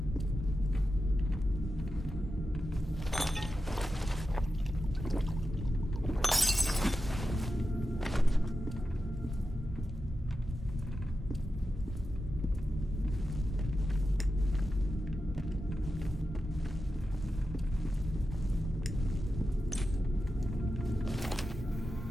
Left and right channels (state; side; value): normal; both; correlation 0.91